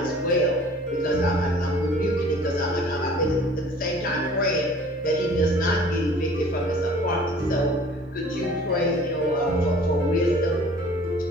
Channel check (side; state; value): both; normal; correlation 0.49